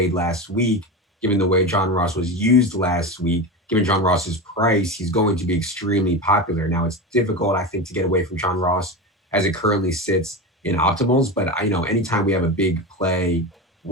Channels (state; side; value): normal; both; correlation 0.22